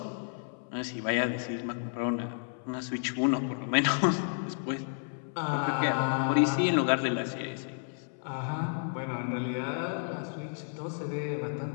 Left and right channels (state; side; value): silent; right; 57 dB below the other